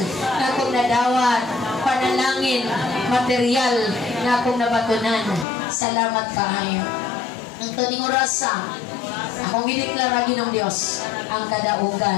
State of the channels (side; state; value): right; drops out; at 5.5 s